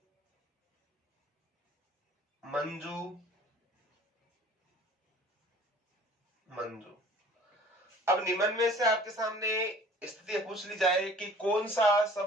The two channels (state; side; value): normal; both; correlation 0.50